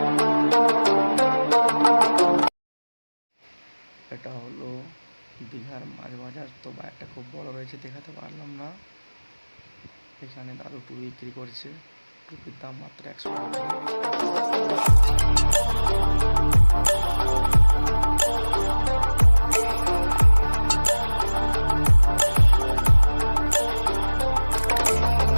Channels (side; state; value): both; inverted; correlation -1.00